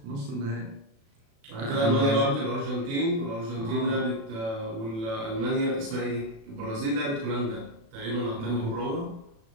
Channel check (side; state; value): left; late; 36 ms